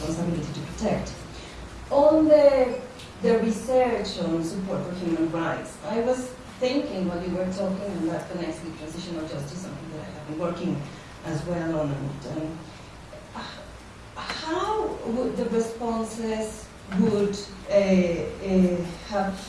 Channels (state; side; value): identical; both; correlation 1.00